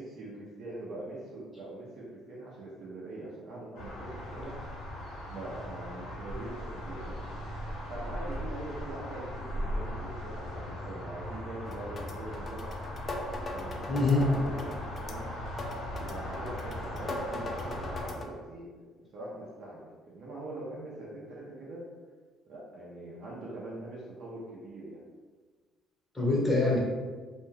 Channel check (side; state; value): both; normal; correlation 0.67